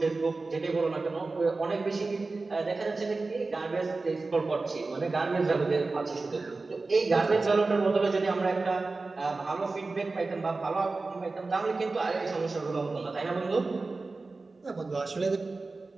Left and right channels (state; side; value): quieter; left; 3.6 dB